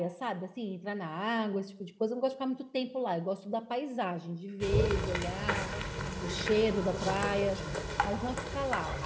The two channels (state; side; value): identical; both; correlation 1.00